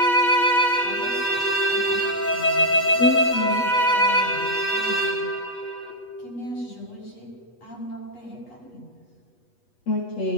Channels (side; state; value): right; late; 8.3 ms